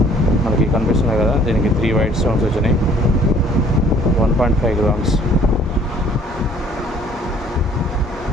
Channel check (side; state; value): both; normal; correlation 0.57